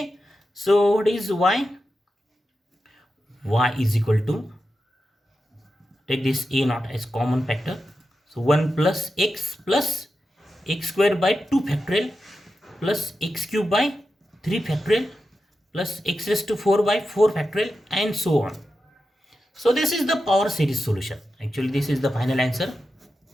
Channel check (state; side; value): normal; both; correlation 0.90